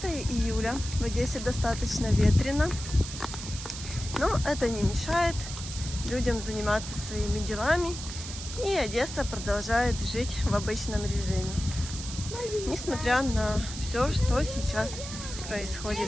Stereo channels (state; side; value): noise; right; hiss, 9 dB below the sound